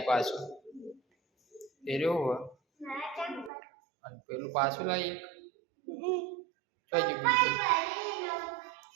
પાછું એ રહ્યો અને પેલું પાછું લાવી એક બીજું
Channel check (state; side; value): drops out; left; at 3.5 s